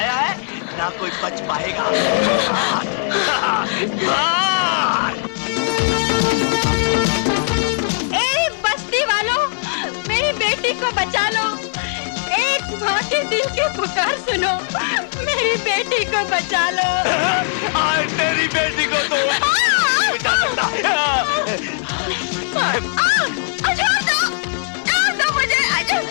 है, ना कोई बच पाएगा। भाग। ए बस्ती वालों, मेरी बेटी को बचा लो। एक माँ के दिल की पुकार सुनो, मेरी बेटी को बचा लो। आज तेरी बेटी को तो बचा सकता। छोड़ दो मुझे।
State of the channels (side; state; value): right; silent; digital silence